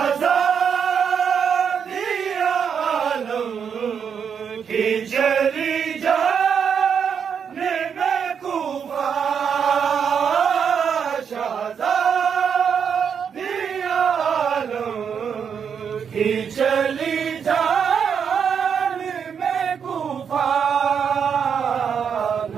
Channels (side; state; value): left; quieter; 7.2 dB